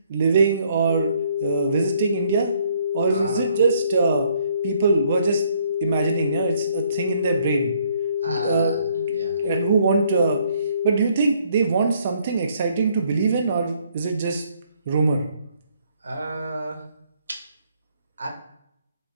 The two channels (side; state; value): both; inverted; correlation -0.66